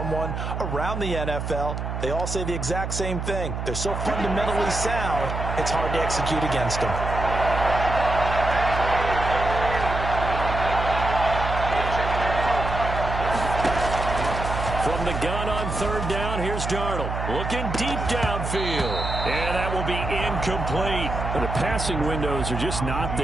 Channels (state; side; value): noise; right; hum, 4 dB below the sound